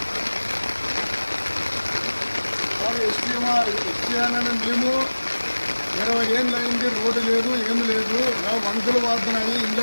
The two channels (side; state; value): both; inverted; correlation -1.00